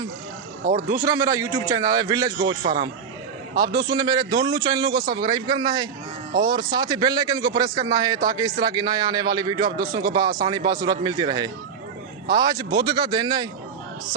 और दूसरा मेरा यूट्यूब चैनल है विलेज गोश्त फार्म। आप दोस्तों ने मेरे दोनों चैनलों को सब्सक्राइब करना है और साथ ही बेल आइकन को प्रेस करना है ताकि इस तरह की नए आने वाली वीडियो आप दोस्तों को आसानी बासूरत मिलती रहे। आज बुध का दिन है,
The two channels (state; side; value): quieter; left; 6.5 dB